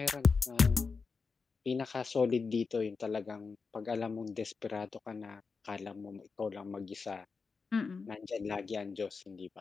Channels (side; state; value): right; quieter; 4.8 dB